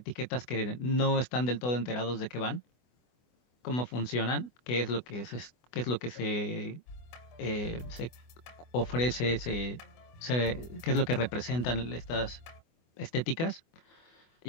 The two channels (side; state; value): right; late; 24 ms